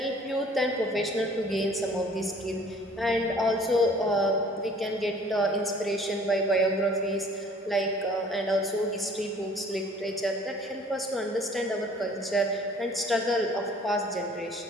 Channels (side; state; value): both; normal; correlation 0.53